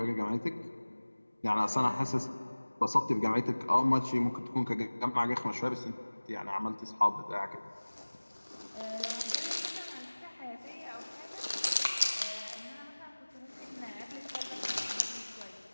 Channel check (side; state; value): both; inverted; correlation -1.00